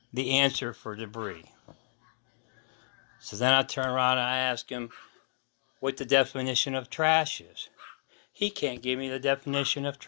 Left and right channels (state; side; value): silent; right; digital silence